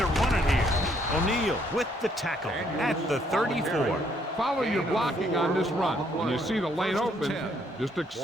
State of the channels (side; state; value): both; normal; correlation 0.69